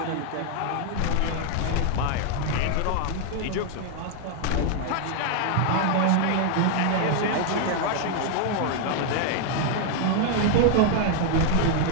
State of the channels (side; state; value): both; different; correlation 0.00